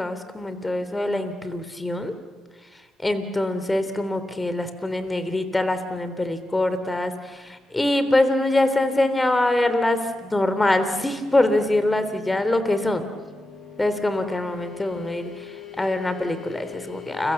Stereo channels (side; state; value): both; normal; correlation 0.90